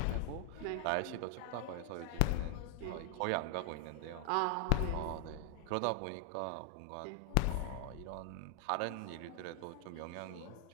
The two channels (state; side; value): different; both; correlation 0.00